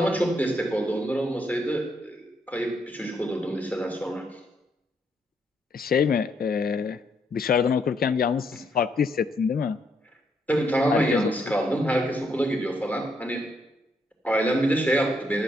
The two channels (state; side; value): normal; both; correlation 0.74